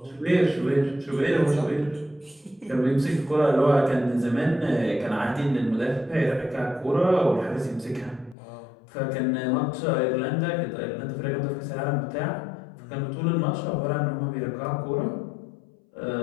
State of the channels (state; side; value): drops out; right; at 8.3 s